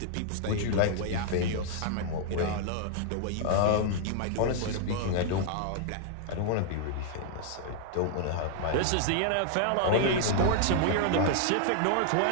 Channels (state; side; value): different; both; correlation -0.01